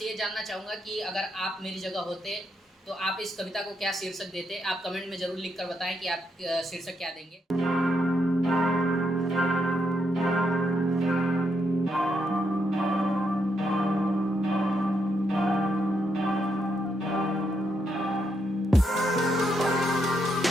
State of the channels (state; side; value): normal; both; correlation 0.79